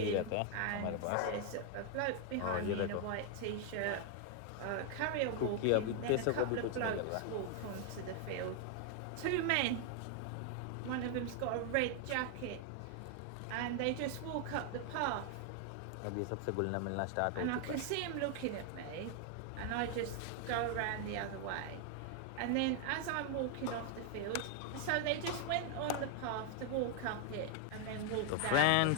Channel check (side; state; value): both; different; correlation 0.00